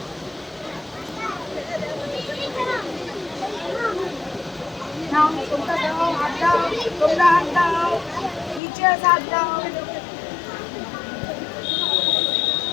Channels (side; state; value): right; drops out; at 8.6 s